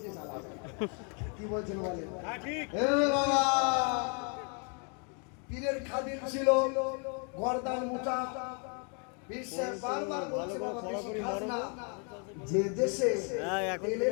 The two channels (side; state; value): right; quieter; 38.3 dB